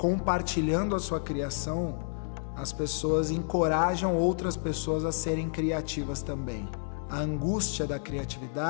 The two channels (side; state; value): right; silent; digital silence